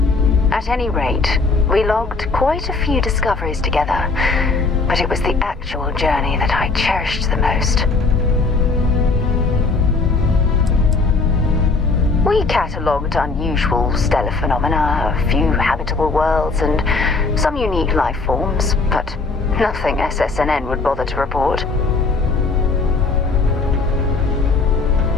At any rate, we logged quite a few discoveries together, but it was the actual journey that I cherished the most. We catalogued unusual stellar phenomena, a few habitable worlds, and some unique life forms, but nothing SSNN would bother to report.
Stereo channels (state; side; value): quieter; right; 3.9 dB